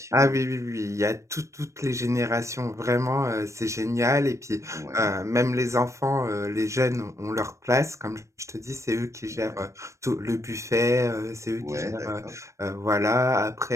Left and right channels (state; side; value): late; left; 0.15 ms